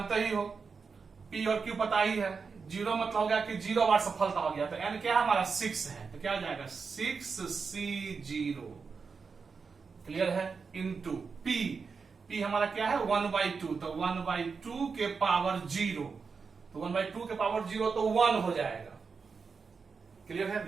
ही हो, पी और क्यू पता ही है। 0 मतलब हो गया कि 0 बार सफलता हो गया, तो n क्या हमारा 6 है, तो क्या हो जाएगा 6C0। क्लियर है? इनटू p हमारा क्या है 1/2, तो 1/2 के पावर 0, तो 1/2 के पावर 0 तो 1 हो जाएगा। क्लियर है?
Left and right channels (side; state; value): left; quieter; 5.2 dB